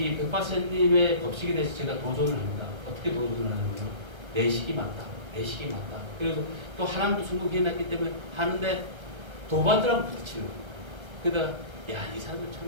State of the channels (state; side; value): late; left; 1.3 ms